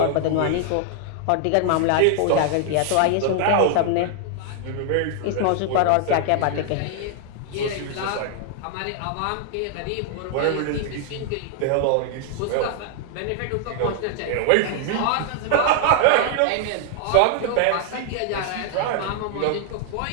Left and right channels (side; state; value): both; different; correlation 0.00